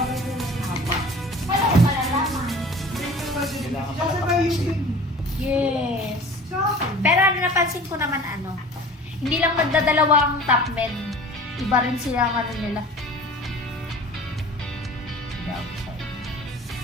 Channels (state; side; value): normal; both; correlation 0.43